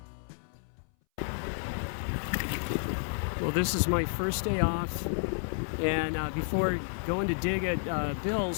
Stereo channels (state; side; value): silent; right; 57 dB below the other